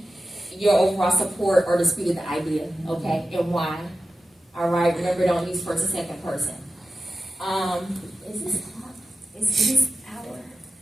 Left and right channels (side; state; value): both; normal; correlation 0.92